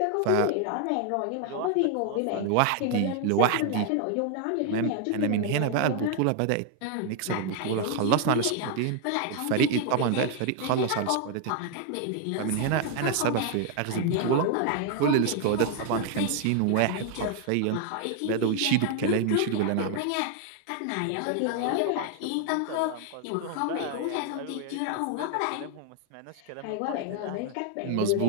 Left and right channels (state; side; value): different; both; correlation 0.00